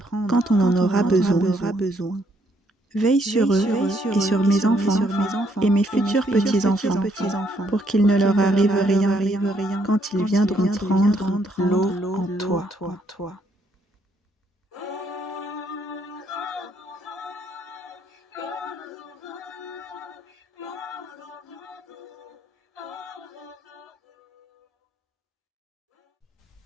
quand on en aura besoin. Veille sur eux et sur mes enfants et mes futurs petits-enfants pour qu'il ne leur arrive rien quand ils viendront prendre l'eau en toi.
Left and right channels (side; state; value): both; normal; correlation 0.71